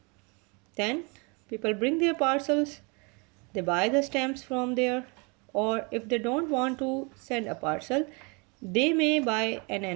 Then people bring their parcels, they buy the stamps from there, or if they don't want to send a parcel, they may buy an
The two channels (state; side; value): quieter; left; 31.1 dB